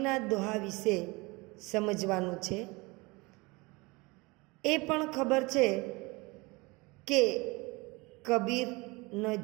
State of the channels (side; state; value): left; quieter; 24.8 dB